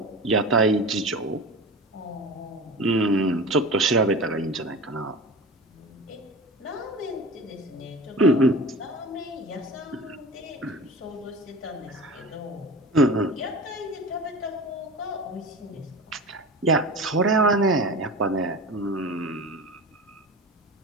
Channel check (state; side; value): normal; both; correlation 0.33